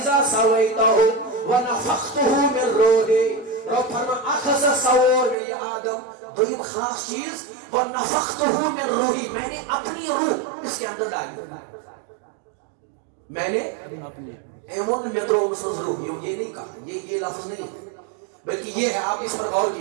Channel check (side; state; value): left; drops out; at 5.4 s